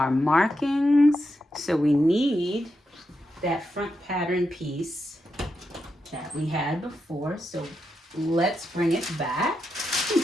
markings. So we need that front pattern piece that we had before. So let's bring it back.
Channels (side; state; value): both; normal; correlation 0.86